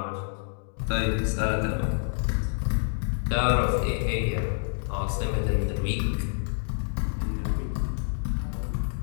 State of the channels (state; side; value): silent; right; digital silence